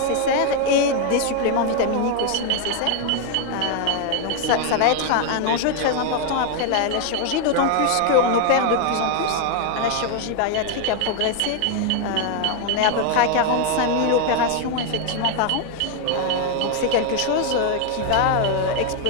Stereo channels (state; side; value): different; both; correlation 0.00